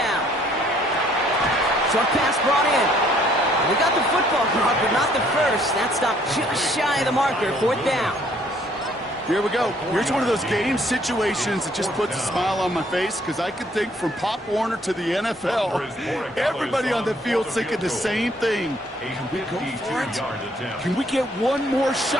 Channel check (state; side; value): normal; both; correlation 0.63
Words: Short pass brought in. We got the football caught, but not the first. That stopped just shy of the marker. 4th down. Here we go. Here's one of those game situations that just puts a smile on my face because I could think from Pop Warner to the NFL, everybody on the field thinking the same thing. Can we go for it? Can we get one more